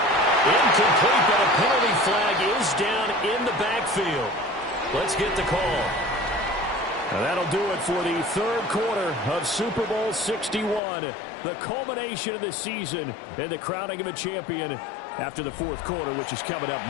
Incomplete, but a penalty flag is down in the backfield. Let's get the call. And that'll do it for the third quarter of Super Bowl 61. The culmination of the season and the crowning of a champion after the fourth quarter, which is coming up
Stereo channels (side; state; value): right; drops out; at 10.8 s